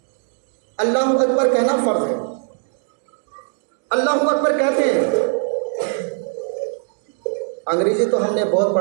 اللہ اکبر کہنا فرض ہے. اللہ اکبر کہتے ہیں. انگریزی تو ہم نے بہت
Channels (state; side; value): silent; left; 62 dB below the other